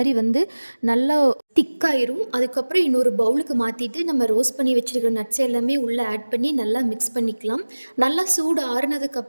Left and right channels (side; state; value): both; inverted; correlation -1.00